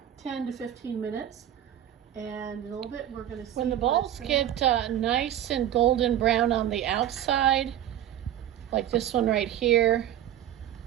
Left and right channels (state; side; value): quieter; left; 11.4 dB